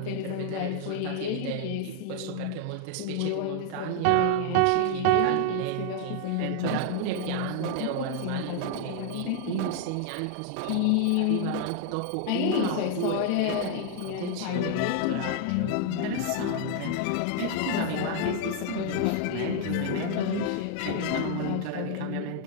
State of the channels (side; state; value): both; different; correlation 0.00